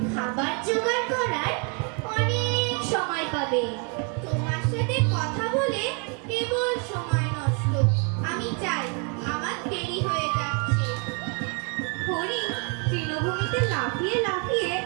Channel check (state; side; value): quieter; left; 36.1 dB